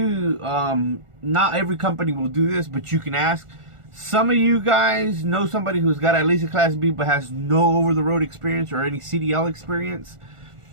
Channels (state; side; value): late; left; 1.4 ms